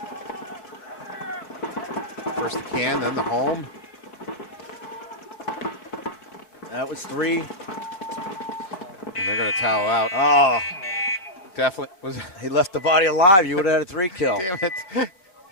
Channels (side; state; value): right; late; 5.3 ms